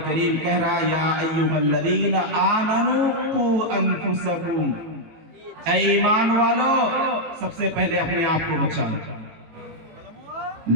کریم کہہ رہا یا ایھا الذین آمنوا قوا انفسکم، اے ایمان والو سب سے پہلے اپنے آپ کو بچاؤ.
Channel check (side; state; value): left; late; 18 ms